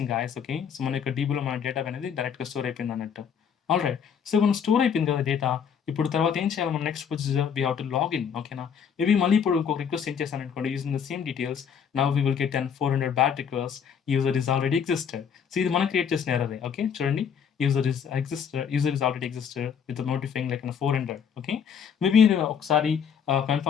guys. Okay, so మన యొక్క డీబీలో మన data అనేది డైరెక్ట్గా స్టోర్ అయిపోయింది అన్నట్టు. ఆల్ రైట్, సో మనం స్టోర్ అయిపోయింది కదా డేటా. ఇప్పుడు తర్వాత ఏం చేయాలి? మన next procedure we have to login. ఓకేనా, మేబీ మళ్ళీ ఇప్పుడు ఇంకొక రిక్వెస్ట్ సెండ్ చేశాను అనుకోండి using the same details. Now we will get 400 bad request. User is already existed. So ఇది మనం క్రియేట్ చేసిన ఎర్రరే. ఓకే, చూడండి, user is already existed with the notifying like 400. Okay, maybe ఒకసారి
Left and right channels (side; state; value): right; quieter; 7.3 dB